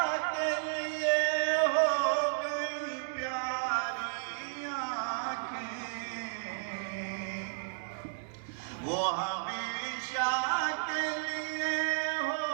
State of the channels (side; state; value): left; silent; digital silence